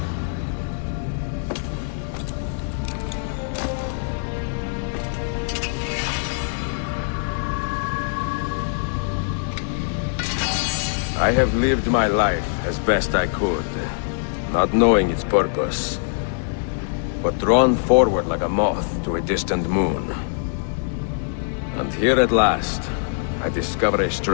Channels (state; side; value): silent; right; digital silence